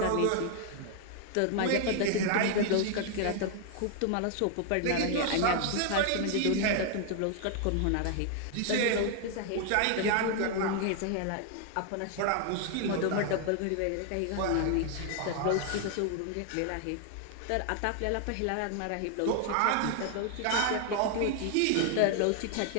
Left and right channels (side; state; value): both; different; correlation 0.00